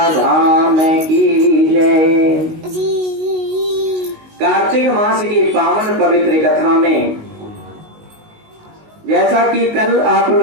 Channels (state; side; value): late; left; 19 ms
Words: धाम की जय। कार्तिक मास की पावन पवित्र कथा में जैसा कि कल आप